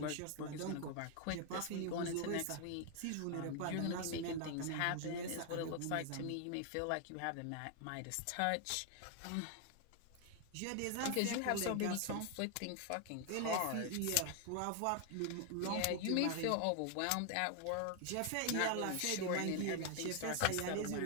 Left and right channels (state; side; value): different; both; correlation 0.00